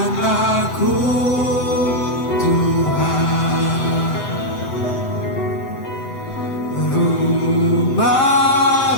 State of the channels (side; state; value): right; late; 8.1 ms